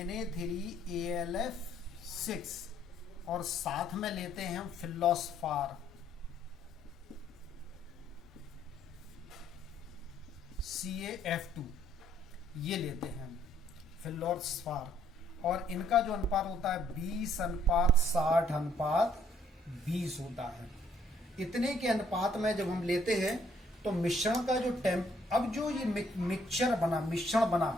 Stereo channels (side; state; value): both; normal; correlation 0.66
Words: और साथ में लेते हैं हम फिलोस्फार CaF2, ये लेते हैं फिलोस्फार, और इनका जो अनुपात होता है 20:60:20 होता है। इतने के अनुपात में जब हम लेते हैं तो मिश्रण का जो अब जो ये मिश्रण